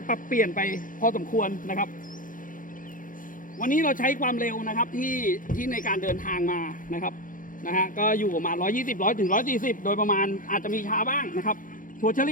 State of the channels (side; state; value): right; late; 0.39 ms